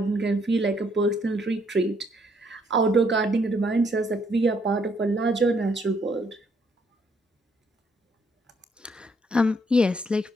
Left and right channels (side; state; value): both; normal; correlation 0.70